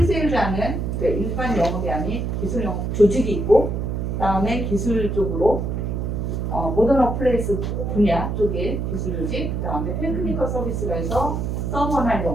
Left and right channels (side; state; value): right; noise; hum, 2 dB below the sound